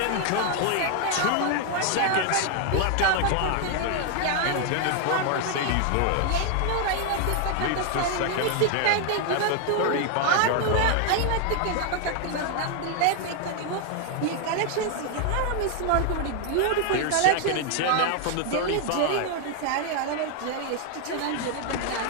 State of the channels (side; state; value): both; different; correlation 0.00